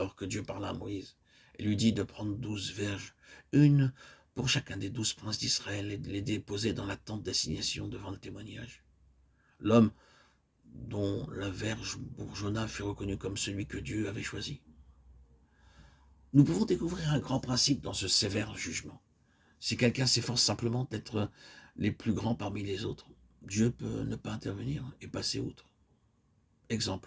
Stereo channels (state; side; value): identical; both; correlation 1.00